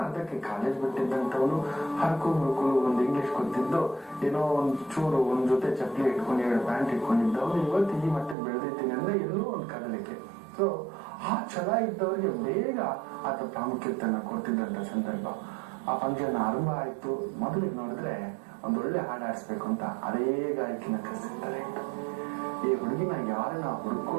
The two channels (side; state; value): left; drops out; at 8.3 s